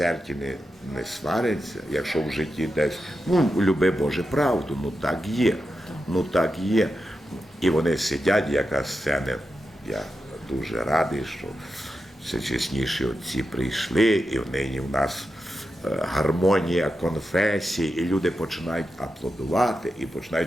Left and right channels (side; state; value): both; normal; correlation 0.89